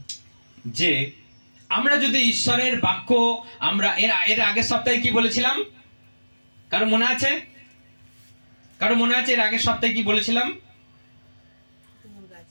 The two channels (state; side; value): inverted; both; correlation -1.00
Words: যে আমরা যদি ঈশ্বরের বাক্য, আমরা এর আগের সপ্তাহে কি বলেছিলাম? কারো মনে আছে? কারো মনে আছে এর আগের সপ্তাহে কি বলেছিলাম?